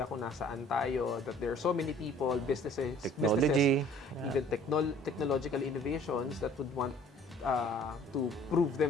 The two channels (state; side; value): normal; both; correlation 0.53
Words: kung nasaan tayo, that there are so many people, Technology. even technological innovations that would want to prove